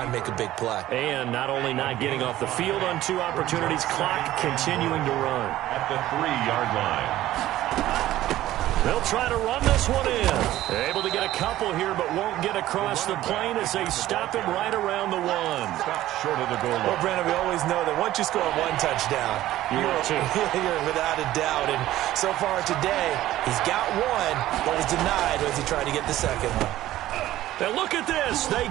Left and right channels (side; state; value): left; quieter; 14.6 dB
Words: and make a big play. And not only not getting off the field on 2 opportunities, clock continuing to run. At the 3-yard line. They'll try to run this one in. Able to get a couple here, but won't get across the plane as they stop him right around the 1. Stop short of the goal line. Well, Brandon, we always know that once you score one touchdown, you're without a doubt. And so far today, he's got one, but was denied as he tried to get the second one. Now look at this. They